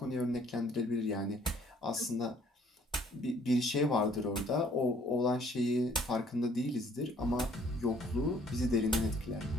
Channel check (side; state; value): both; normal; correlation 0.61